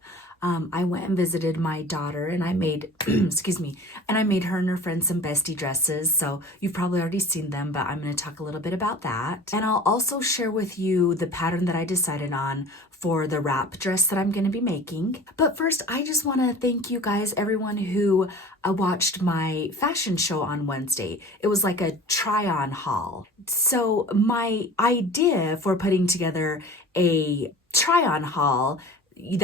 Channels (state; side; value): normal; both; correlation 0.41